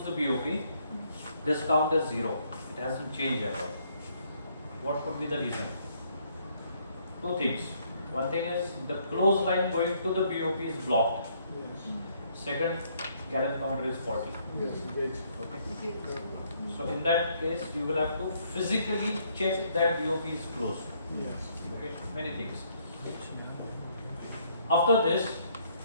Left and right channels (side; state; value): both; inverted; correlation -0.68